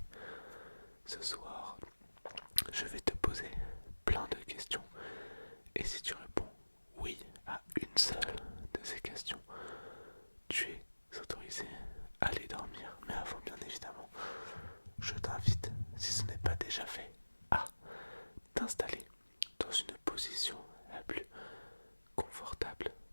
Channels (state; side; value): inverted; both; correlation -1.00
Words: Ce soir, je vais te poser plein de questions et si tu réponds oui à une seule de ces questions, tu es autorisé à aller dormir. Mais avant, bien évidemment, je t'invite, si ce n'est pas déjà fait, à t'installer dans une position la plus confortable